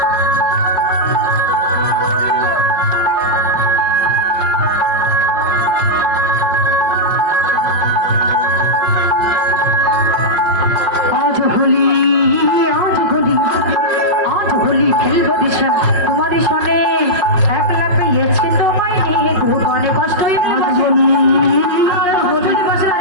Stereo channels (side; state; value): left; late; 5.3 ms